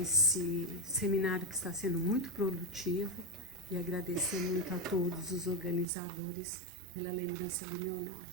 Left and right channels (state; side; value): drops out; left; at 5.9 s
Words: seminário que está sendo muito produtivo e agradecer muito a todos os organizadores pela lembrança do meu nome.